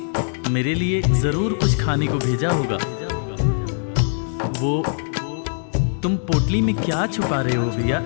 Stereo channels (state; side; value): silent; right; digital silence